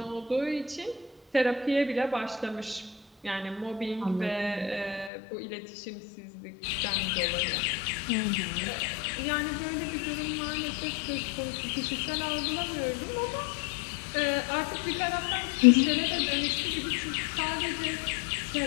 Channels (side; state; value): right; drops out; at 5.1 s